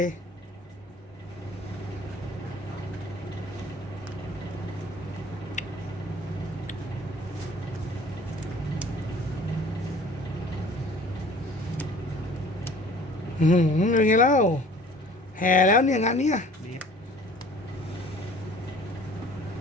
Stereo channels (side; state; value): both; normal; correlation 0.49